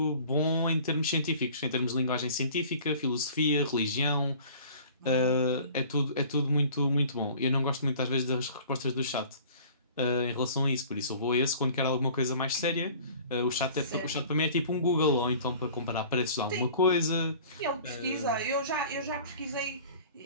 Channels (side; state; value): both; inverted; correlation -0.47